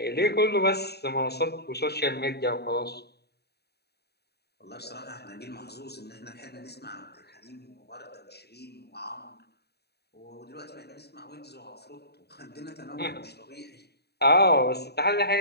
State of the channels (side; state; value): right; late; 0.48 ms